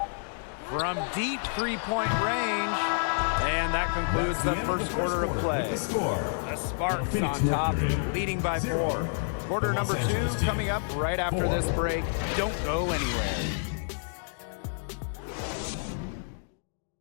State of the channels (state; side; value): silent; right; digital silence